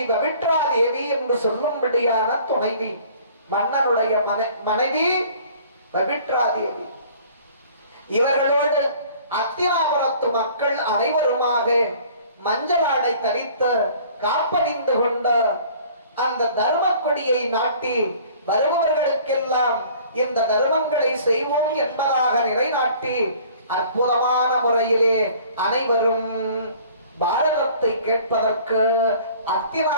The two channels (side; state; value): both; inverted; correlation -0.51